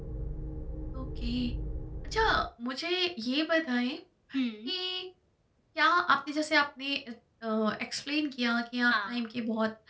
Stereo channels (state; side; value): identical; both; correlation 1.00